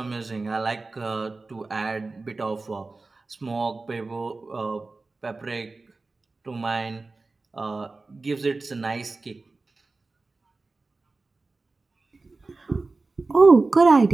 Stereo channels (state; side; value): quieter; left; 3.6 dB